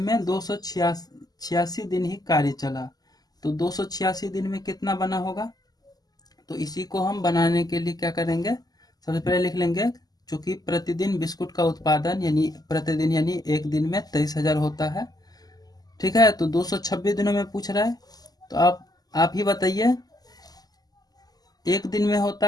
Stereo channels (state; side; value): late; right; 0.19 ms